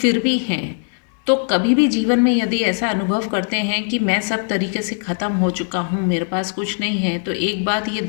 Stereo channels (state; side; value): silent; right; 66 dB below the other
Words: भी हैं। तो कभी भी जीवन में यदि ऐसा अनुभव करते हैं कि मैं सब तरीके से ख़त्म हो चुका हूँ, मेरे पास कुछ नहीं है, तो एक बात ये